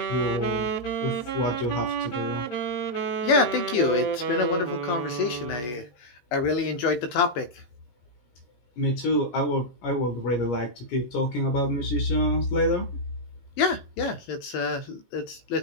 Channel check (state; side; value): late; right; 17 ms